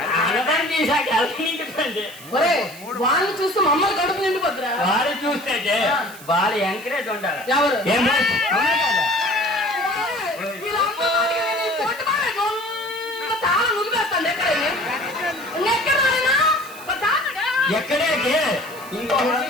ఆనందాన్ని తీసాక ఎలా నిండిపోయింది ఒరే వాళ్ళని చూస్తే మమ్మల్ని కడుపు నిండిపోద్దిరా వారు చూస్తే వాళ్ళు ఎంకరేజ్ ఉండాలి ఎవరు ఏమో అవునా కదా? వీళ్ళ అమ్మ వాడికి నేను ఈ పొట్టు బాగా గొంత తాళం నులిపేస్తాను ఎక్కడైనా ఎక్కడైనా ఎక్కడే ఇంకో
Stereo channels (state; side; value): noise; right; hiss, 18 dB below the sound